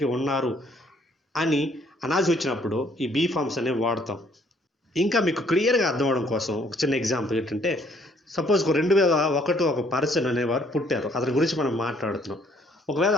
ఉన్నారు అని అనాల్సి వచ్చినప్పుడు ఈ బీ ఫార్మ్స్ అనేవి వాడతాం. ఇంకా మీకు క్లియర్గా అర్థం అవడం కోసం ఒక చిన్న ఎగ్జాంపుల్ ఏంటంటే, సపోజ్ 2001 ఒక పర్సన్ అనేవారు పుట్టారు, అతని గురించి మనం మాట్లాడుతున్నాం. ఒకవేళ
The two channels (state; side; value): normal; both; correlation 0.64